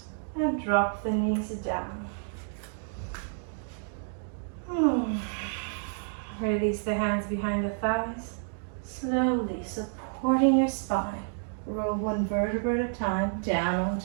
and drop the knees down. Release the hands behind the thighs, slowly supporting your spine. Roll one vertebra at a time down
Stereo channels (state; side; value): silent; left; digital silence